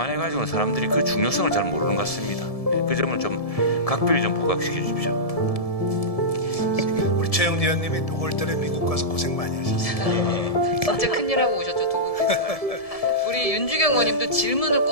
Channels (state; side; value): late; right; 1.7 ms